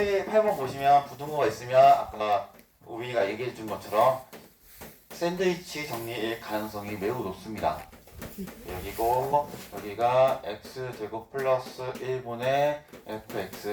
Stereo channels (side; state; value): both; identical; correlation 1.00